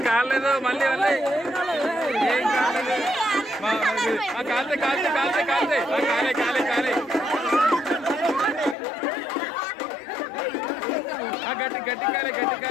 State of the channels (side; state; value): right; drops out; at 8.8 s